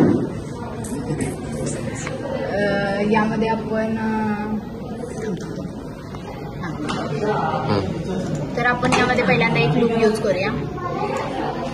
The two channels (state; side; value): identical; both; correlation 1.00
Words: यामध्ये आपण तर आपण यामध्ये पहिल्यांदा एक लूप यूज करूया.